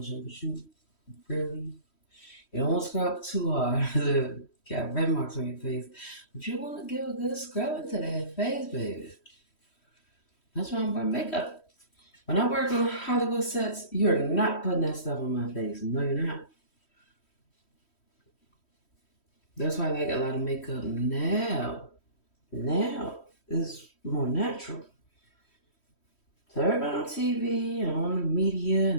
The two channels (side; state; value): right; late; 3.1 ms